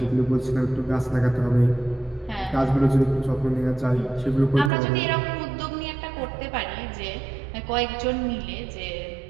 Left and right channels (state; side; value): drops out; left; at 4.7 s